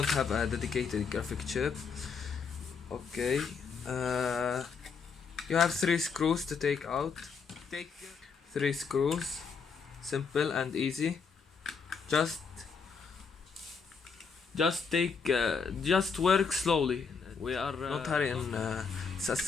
have a dedicated graphic chip. Okay. You have 3 screws to take out. Take 3 screws. Simple and easy. Just work slowly. We are not hurry in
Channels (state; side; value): quieter; right; 5.6 dB